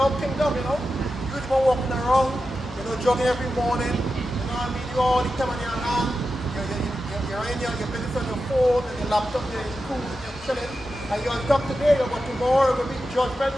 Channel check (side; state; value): both; normal; correlation 0.91